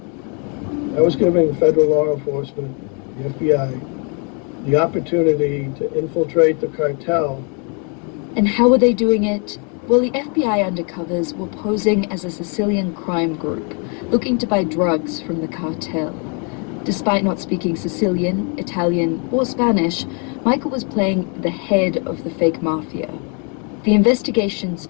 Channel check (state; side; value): quieter; right; 37.0 dB